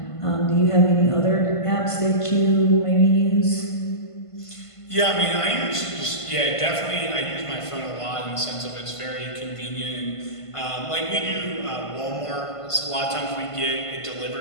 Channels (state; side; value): late; right; 1.5 ms